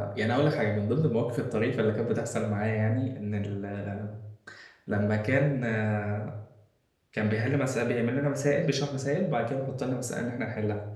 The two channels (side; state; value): both; identical; correlation 1.00